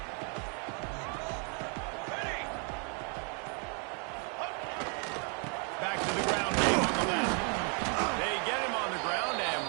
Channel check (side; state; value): left; quieter; 38.3 dB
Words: Back to the ground game on the left. They get him on the ground, and